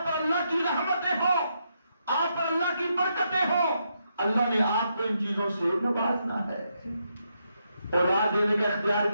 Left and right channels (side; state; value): both; inverted; correlation -0.80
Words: پر اللہ کی رحمتیں ہوں، آپ پر اللہ کی برکتیں ہوں. اللہ نے آپ کو ان چیزوں سے نوازنا ہے. اولاد دینے کا اختیار